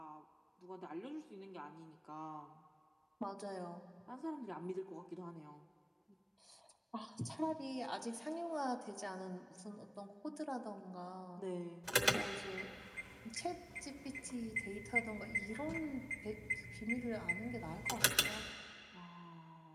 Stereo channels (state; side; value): identical; both; correlation 1.00